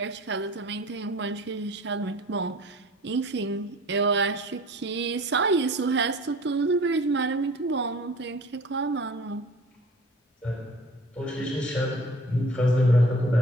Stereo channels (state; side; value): normal; both; correlation 0.44